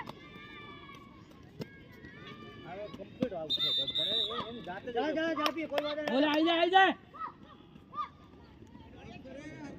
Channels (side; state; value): both; identical; correlation 1.00